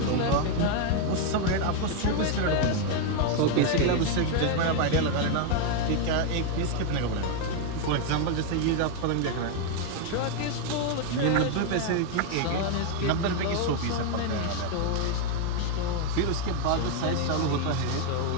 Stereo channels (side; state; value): both; different; correlation 0.01